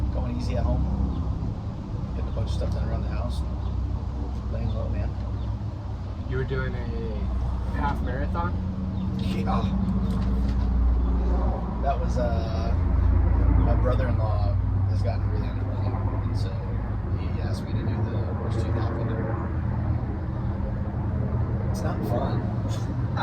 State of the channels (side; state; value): both; identical; correlation 1.00